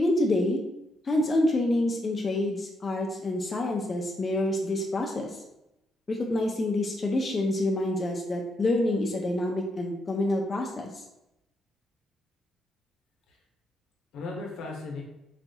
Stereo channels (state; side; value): normal; both; correlation 0.79